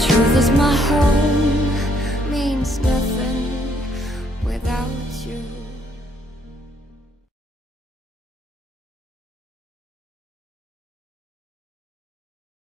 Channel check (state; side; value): normal; both; correlation 0.70